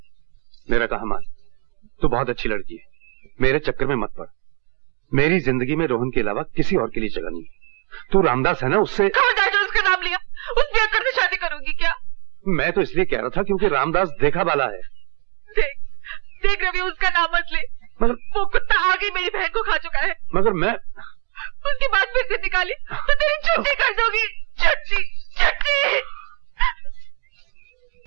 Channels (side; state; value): left; quieter; 36.3 dB